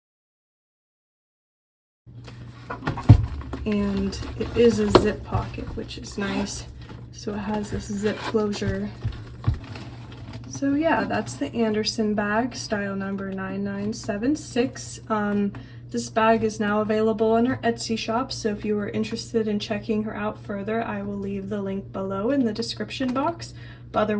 And it is a zip pocket, which is nice. So it has this zip closure. So yeah, that's the Anderson bag, style number 9976. This bag is now available in our Etsy shop, so if you are interested in checking her out further, I will leave the link below in the description box. But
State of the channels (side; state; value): both; identical; correlation 1.00